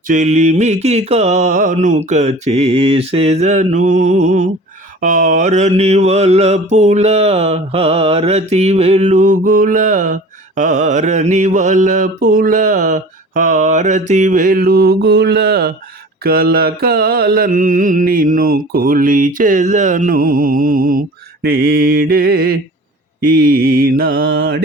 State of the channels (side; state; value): both; normal; correlation 0.42